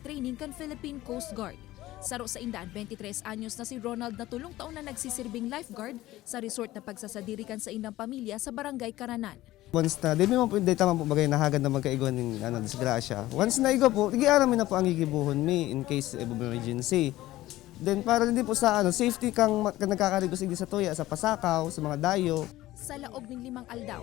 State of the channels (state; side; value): quieter; right; 16.3 dB